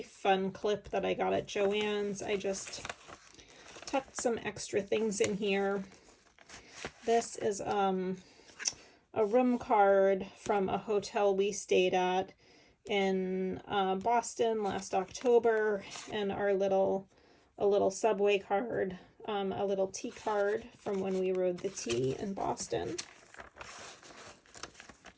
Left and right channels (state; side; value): identical; both; correlation 1.00